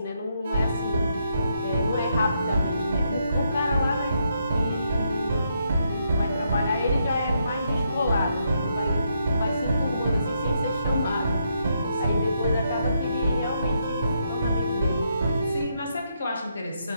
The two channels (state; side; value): inverted; both; correlation -0.78